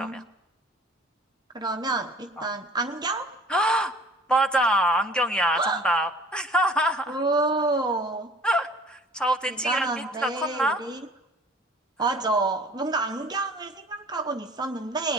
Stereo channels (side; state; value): both; normal; correlation 0.49